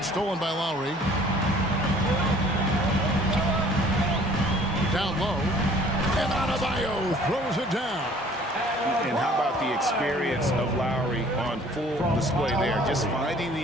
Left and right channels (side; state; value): both; normal; correlation 0.54